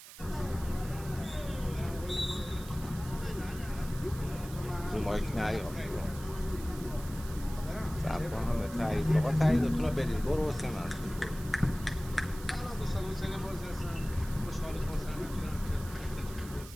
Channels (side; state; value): right; noise; hiss, 16 dB below the sound